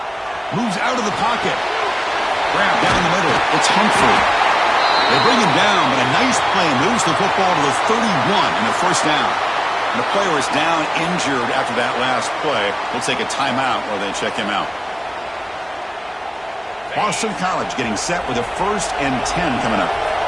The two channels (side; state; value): both; identical; correlation 1.00